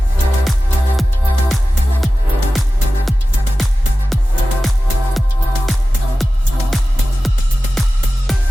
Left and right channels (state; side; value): normal; both; correlation 0.95